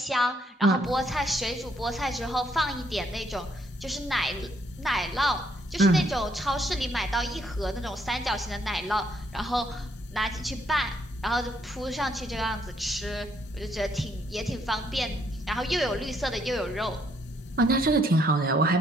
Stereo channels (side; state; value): both; normal; correlation 0.70